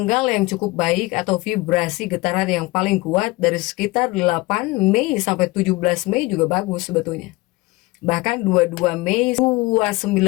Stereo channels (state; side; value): quieter; right; 22.0 dB